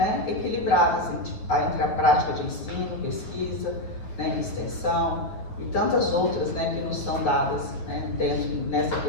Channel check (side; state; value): right; late; 9.6 ms